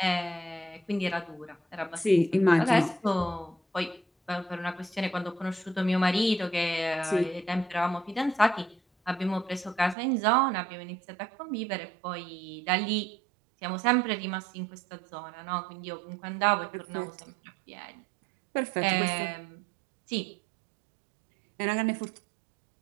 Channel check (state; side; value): drops out; left; at 10.0 s